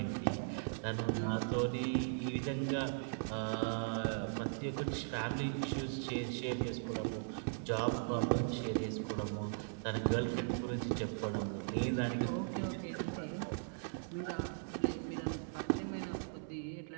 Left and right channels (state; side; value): silent; left; 52 dB below the other